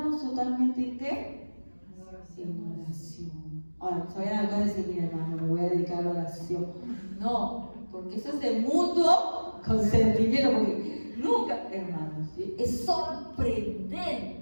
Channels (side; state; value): both; inverted; correlation -1.00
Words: totalmente en ¿qué? En oración. Ahora, todavía acaba de decir, mira hermano, me voy a dedicar a la oración. No, porque eso es de mutuo consentimiento, porque nunca, hermanos, ¿sí? Es